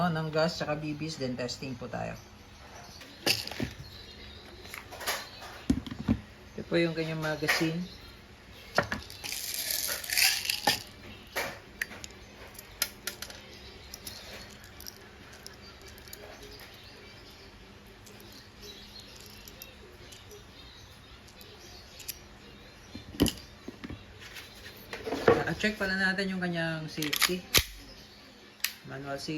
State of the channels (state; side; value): identical; both; correlation 1.00